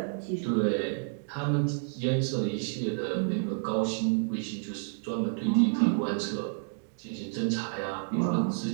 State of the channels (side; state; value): left; silent; 58 dB below the other